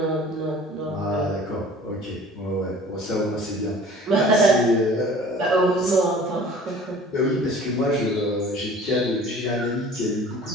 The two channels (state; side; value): normal; both; correlation 0.47